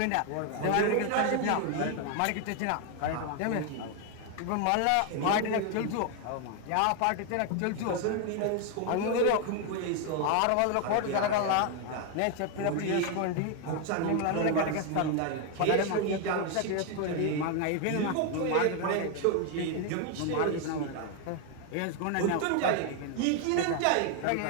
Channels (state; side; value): different; both; correlation 0.01